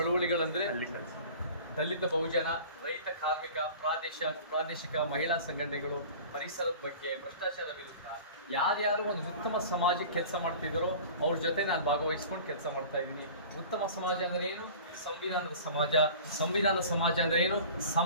ದಲಿತ ಬಹುಜನ, ರೈತ, ಕಾರ್ಮಿಕ, ಪ್ರಾದೇಶಿಕ ಮಹಿಳಾ ಸಂಘಟನೆಗಳು, ಪರಿಸರದ ಬಗ್ಗೆ, ಭ್ರಷ್ಟಾಚಾರ ವಿರುದ್ಧ ಯಾರ್ಯಾರು ಒಂದು ಉತ್ತಮ ಸಮಾಜಕ್ಕೆ ಕೆಲಸ ಮಾಡ್ತಿದ್ದಾರೋ ಅವ್ರ ಜೊತೆ ನಾನು ಭಾಗವಹಿಸ್ಕೊಂಡು ಕೆಲಸ ಮಾಡ್ತಾ ಇದ್ದೀನಿ. ಉತ್ತಮ ಸಮಾಜ ಅಂದ್ರೆ ಏನು? ಸಂವಿಧಾನದ ಸಮಾಜ. ಸಂವಿಧಾನದ ಸಮಾಜ ಅಂದ್ರೆ ಏನು?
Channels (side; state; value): both; inverted; correlation -0.41